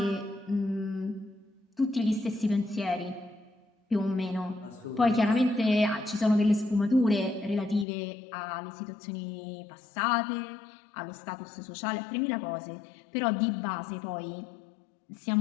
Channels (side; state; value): right; drops out; at 7.9 s